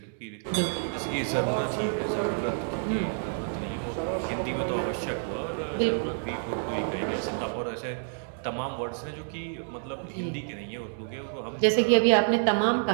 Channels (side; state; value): left; silent; digital silence